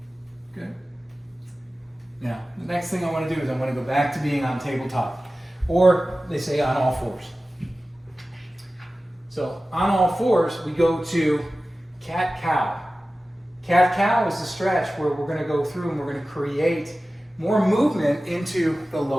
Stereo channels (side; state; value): both; normal; correlation 0.96